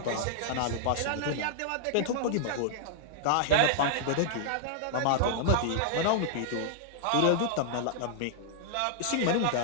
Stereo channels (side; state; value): both; different; correlation -0.01